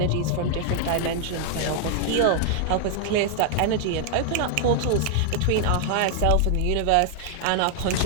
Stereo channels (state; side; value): different; both; correlation 0.00